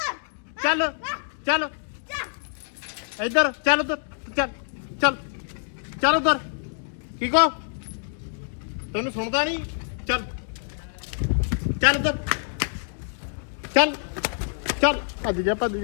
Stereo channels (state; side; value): silent; right; digital silence